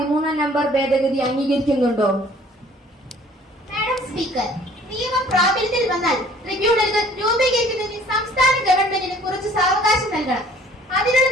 നമ്പർ ഭേദഗതി അംഗീകരിക്കുന്നുണ്ടോ? മാഡം സ്പീക്കർ, നിയമം പ്രാബല്യത്തിൽ വന്നാൽ ട്രിബ്യൂണലുകൾ രൂപീകരിക്കുന്നതിന് സംസ്ഥാന ഗവൺമെന്റിന് കുറച്ച് സാവകാശം നൽകണം. അതിനുള്ള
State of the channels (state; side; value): normal; both; correlation 0.55